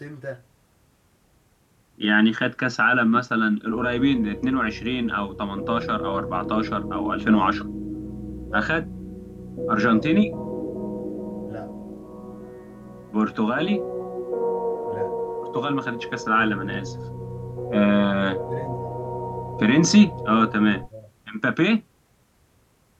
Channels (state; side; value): identical; both; correlation 1.00